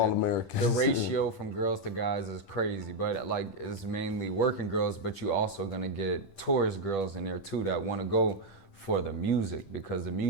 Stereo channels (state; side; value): late; right; 10 ms